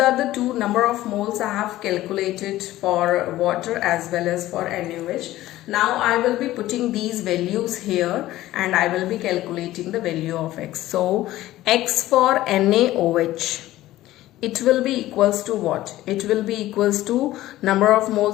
the two number of moles I have calculated for water as well as for NaOH. Now I will be putting these values here and I will be calculating the value of X. So X for NaOH, it will be equals to what? It will be equals to number of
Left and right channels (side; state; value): right; quieter; 15.5 dB